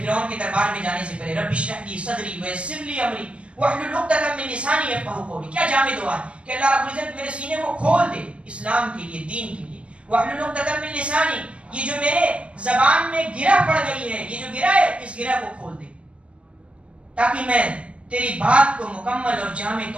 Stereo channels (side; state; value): left; late; 0.057 ms